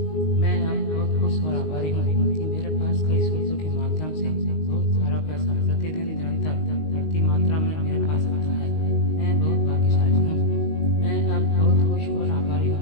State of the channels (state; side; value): late; right; 19 ms